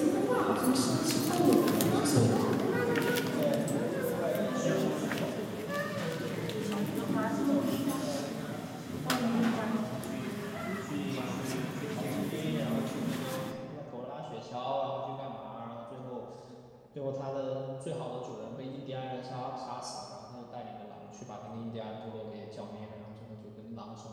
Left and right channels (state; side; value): identical; both; correlation 1.00